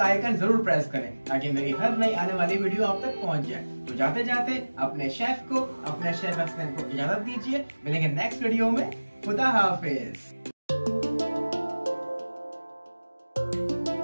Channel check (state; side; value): inverted; both; correlation -1.00